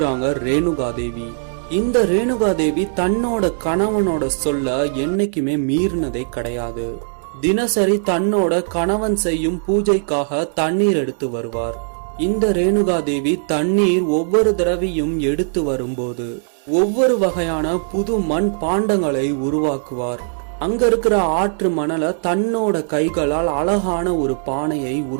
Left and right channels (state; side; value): silent; left; digital silence